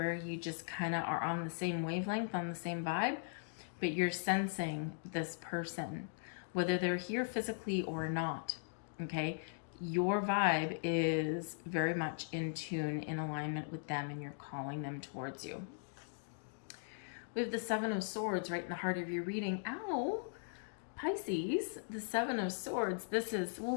you just kind of are on the same wavelength, on the same vibe, but you're sensing this person, whether they're here physically or not, okay? your vibe is very much in tune, in alignment with them, and you're calling them towards you. We have the Seven of Swords right in the heart of your reading. Ow! Pisces, the Seven of Swords. This is,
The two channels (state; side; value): silent; right; digital silence